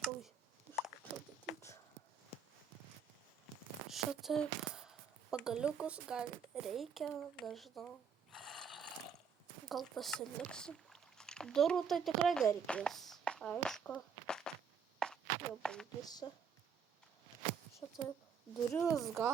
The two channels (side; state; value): left; quieter; 6.5 dB